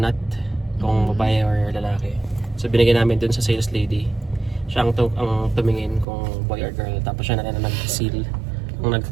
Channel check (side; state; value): left; drops out; at 6.1 s